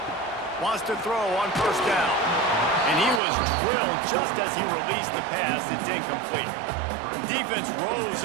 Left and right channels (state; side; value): drops out; left; at 3.2 s